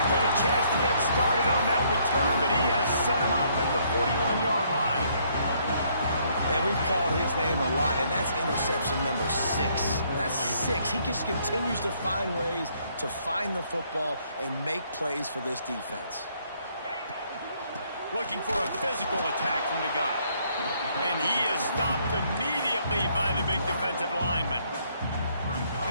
get a chance to get started on that return, but he has set him up at the 41-yard line. And we've called his name a lot, and that's interception number 6. That's 6. He just continues to find ways to find the football and make plays for this defense. Looking for a physical attack from the guy. And he is stopped immediately by the big defensive lineman.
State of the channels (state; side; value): inverted; both; correlation -0.67